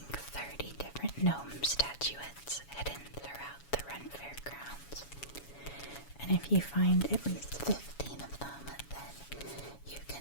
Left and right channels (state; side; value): late; right; 7.1 ms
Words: 30 different gnome statuettes hidden throughout the Ren Fair grounds. And if you find at least 15 of them, then you